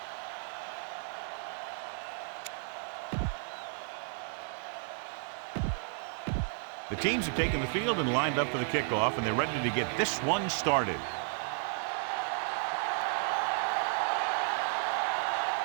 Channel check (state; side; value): silent; left; 56 dB below the other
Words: The teams have taken the field and lined up for the kickoff, and they're ready to get this one started.